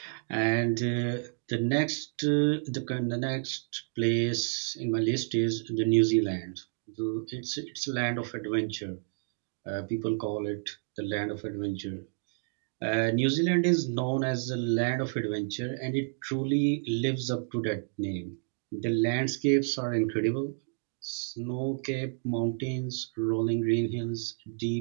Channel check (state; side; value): silent; left; digital silence